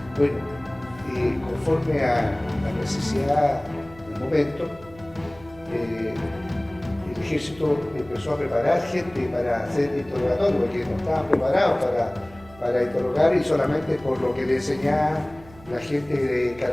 Bueno, conforme a la necesidad del momento, el ejército empezó a preparar gente para hacer interrogatorio, porque no estaban preparados para interrogar, y solamente por lo que le enseñaban la gente de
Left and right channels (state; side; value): noise; right; hum, 22 dB below the sound